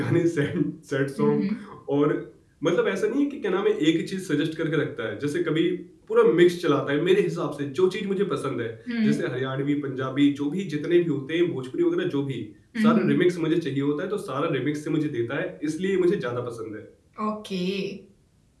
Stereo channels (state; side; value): identical; both; correlation 1.00